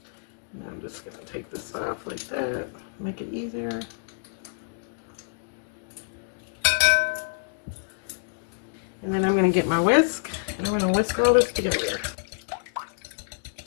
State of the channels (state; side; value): silent; right; digital silence